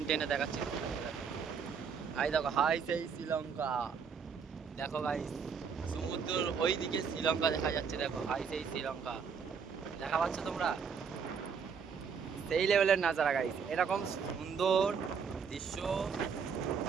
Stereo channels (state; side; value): quieter; left; 6.2 dB